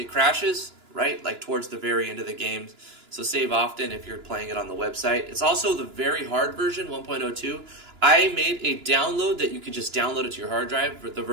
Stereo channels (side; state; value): left; late; 2.9 ms